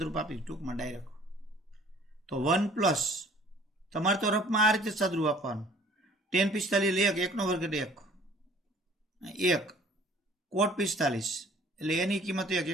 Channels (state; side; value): normal; both; correlation 0.54